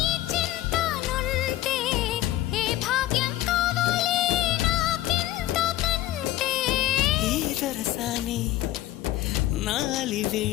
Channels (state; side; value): quieter; right; 15.1 dB